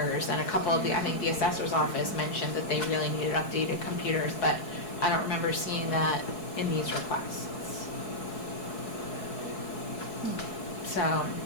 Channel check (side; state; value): right; late; 4.7 ms